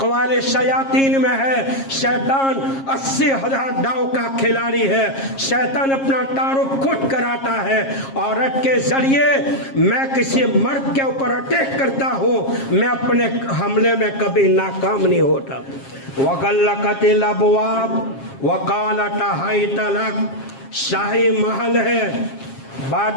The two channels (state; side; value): late; right; 7.4 ms